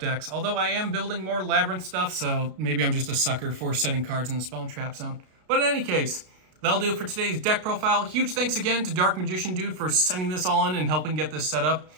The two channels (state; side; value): late; left; 33 ms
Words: Although I am building more Labyrinth stuff, so maybe I'm just a sucker for setting cards in the spell and trap zone. But in any case, that'll do it for today's deck profile. Huge thanks again to DarkMagicianDude for sending this all in and helping get this set up.